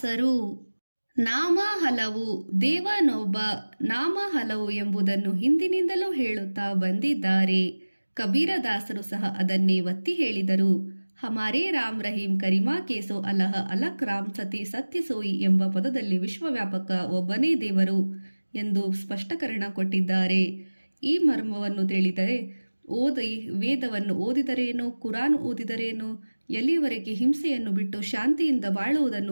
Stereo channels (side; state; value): both; inverted; correlation -1.00